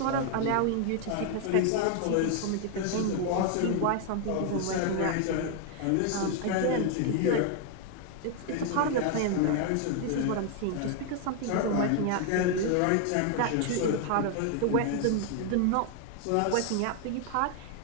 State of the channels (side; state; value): both; different; correlation 0.00